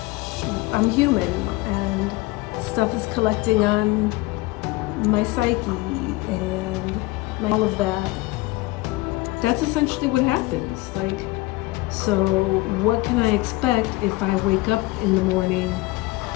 I'm human, and stuff is collecting on my psyche and all of that. That's essentially what happens. Like, so what can I expect if I wake up in the morning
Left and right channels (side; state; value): right; quieter; 20.8 dB